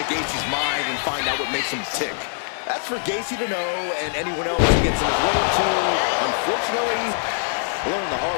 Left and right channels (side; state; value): right; silent; digital silence